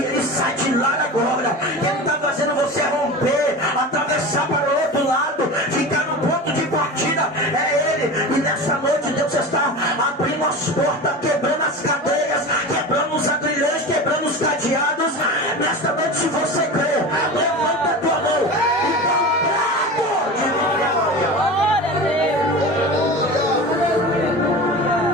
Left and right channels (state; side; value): normal; both; correlation 0.30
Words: ele sai de lá agora. Quem está fazendo você romper, atravessar para o outro lado, ficar no ponto de partida, é ele. E nessa noite Deus está abrindo as portas, quebrando as cadeias, quebrando os agrilhões, quebrando os cadeados. Nesta noite, se você crê, levanta a tua mão e dá um brado de vitória. Glória a Deus.